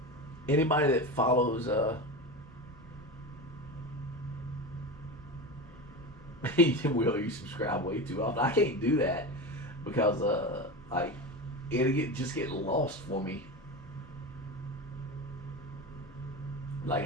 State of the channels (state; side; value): normal; both; correlation 0.24